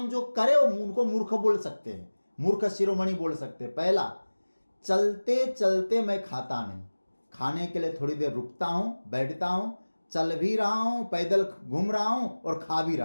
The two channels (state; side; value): inverted; both; correlation -1.00